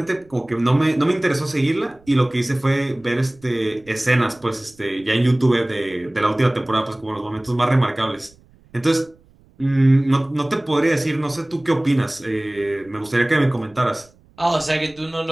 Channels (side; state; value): right; noise; rumble, 29 dB below the sound